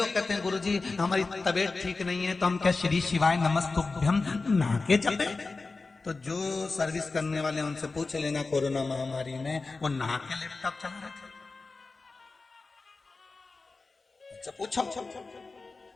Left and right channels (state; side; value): quieter; right; 3.8 dB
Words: कहते हैं गुरुजी हमारी तबीयत ठीक नहीं है तो हम क्या श्री शिवाय नमस्तुभ्यम नहा के जपे। तो जो सर्विस करने वाले उनसे पूछ लेना, कोरोना महामारी में वो नहा के लैपटॉप चला रहे थे। अच्छा पूछो,